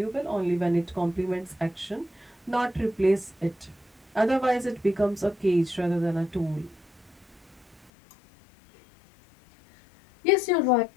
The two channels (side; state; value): right; drops out; at 7.9 s